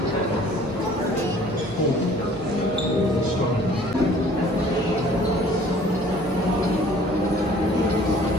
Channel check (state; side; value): normal; both; correlation 0.53